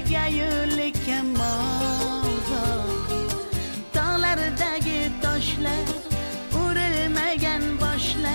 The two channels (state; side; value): inverted; both; correlation -1.00